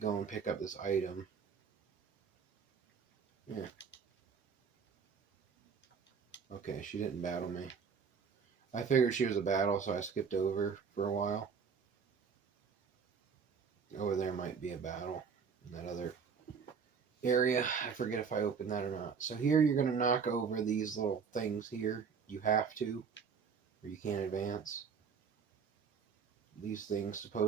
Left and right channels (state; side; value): quieter; left; 6.1 dB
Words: and pick up this item. Yeah. Okay, she didn't battle me. I figured she was a battle, so I skipped over for a while. Over there might be a battle in that other area. I forget if I opened that or not. So here you're going to knock over these little things here. You have to, or you can't advance. These things